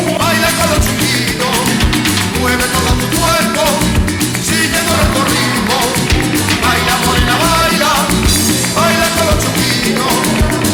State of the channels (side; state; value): both; identical; correlation 1.00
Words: Baila con los chiquitos, mueve todo tu cuerpo.